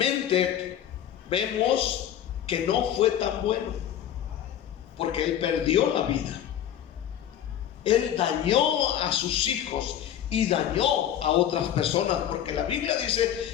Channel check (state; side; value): quieter; right; 10.5 dB